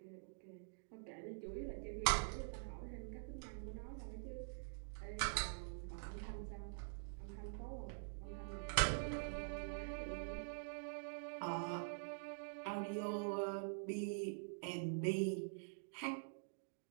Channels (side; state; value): left; silent; digital silence